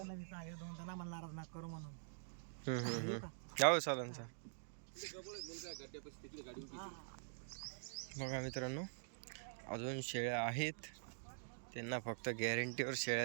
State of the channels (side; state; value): left; silent; digital silence